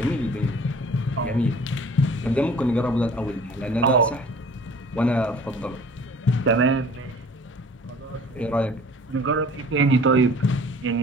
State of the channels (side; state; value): both; normal; correlation 0.48